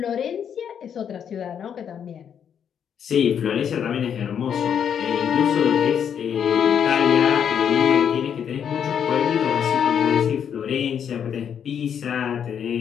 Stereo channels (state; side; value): quieter; right; 8.2 dB